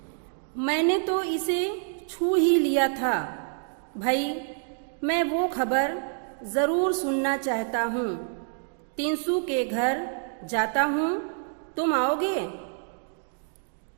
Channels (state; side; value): silent; left; 60 dB below the other